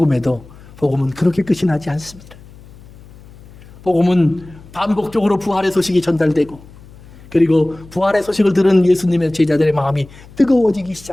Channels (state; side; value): noise; left; hum, 21 dB below the sound